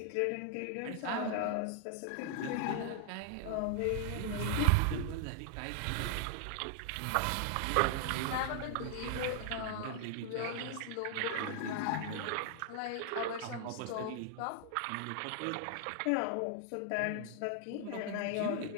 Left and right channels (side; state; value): both; different; correlation 0.00